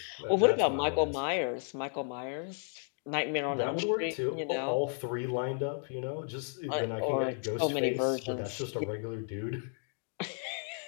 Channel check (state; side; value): silent; right; 56 dB below the other